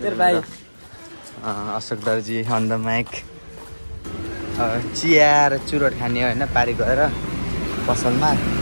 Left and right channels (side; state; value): both; inverted; correlation -1.00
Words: अशोक दर्जी अन द माइक चिया र चुरोट खाने होइन पारी गएर पसलमा